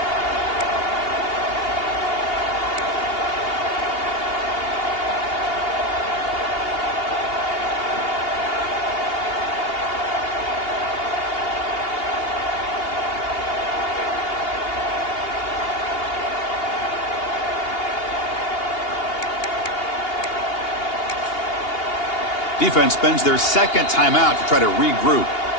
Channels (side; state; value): right; late; 2.8 ms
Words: Defense spends their second timeout to try to regroup.